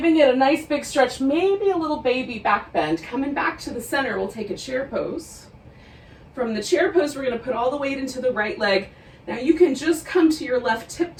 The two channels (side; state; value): both; identical; correlation 1.00